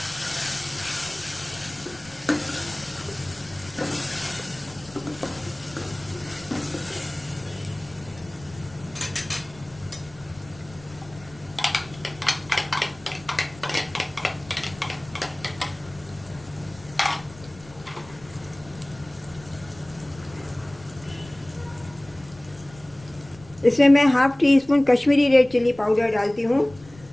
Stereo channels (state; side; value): noise; left; rumble, 21 dB below the sound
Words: इसमें मैं half teaspoon Kashmiri red chilli powder डालती हूँ।